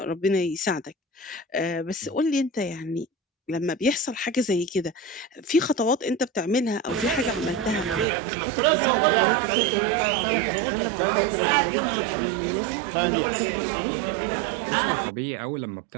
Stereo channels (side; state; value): left; drops out; at 8.1 s